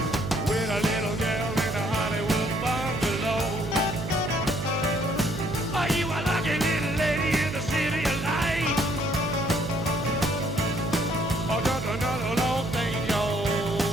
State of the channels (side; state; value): right; noise; hum, 8 dB below the sound